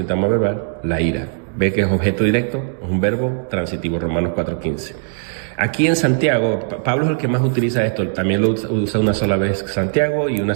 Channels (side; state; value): left; silent; 67 dB below the other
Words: verbal, la ira. Ve que es objeto directo, es un verbo transitivo, Romanos 4:15. Aquí en Santiago, Pablo es el que más utiliza esto, también lo usa una sola vez Santiago y una